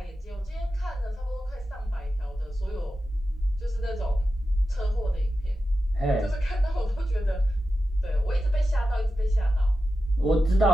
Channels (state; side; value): normal; both; correlation 0.92